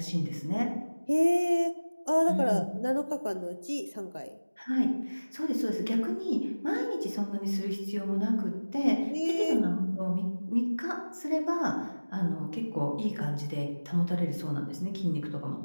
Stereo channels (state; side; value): inverted; both; correlation -1.00